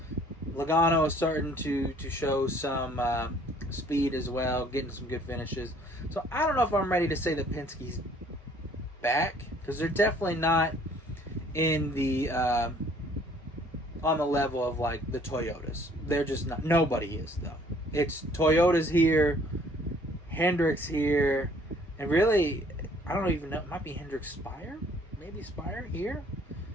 Logano is starting to show some speed as well, getting some good finishes. So I don't know if I'm ready to say that Penske's back, because they're definitely not in the on the level of like the Toyotas. They're just not. Nobody is though. It's Toyota's here, Hendrick's here, And really, I don't even know. It might be Hendrick Spire, maybe Spire here,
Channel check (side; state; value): both; normal; correlation 0.58